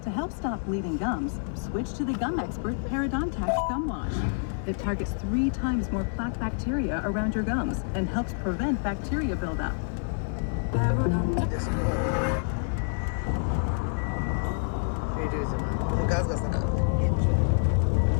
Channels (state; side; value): silent; right; digital silence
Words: To help stop bleeding gums, switch to the gum expert Parodontax Gum Wash. It targets 3 times more plaque bacteria around your gums and helps prevent bacteria buildup. গাছ গাছ না